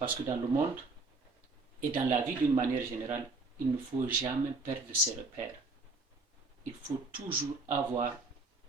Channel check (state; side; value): quieter; left; 3.7 dB